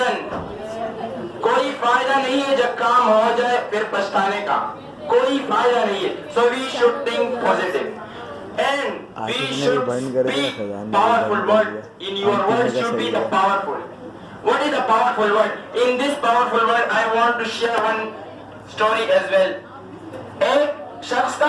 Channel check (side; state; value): both; identical; correlation 1.00